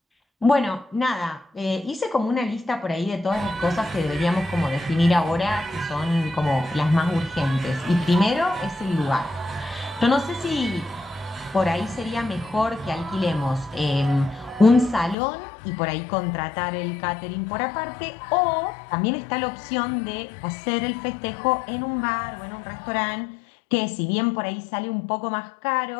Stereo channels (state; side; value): drops out; right; at 15.2 s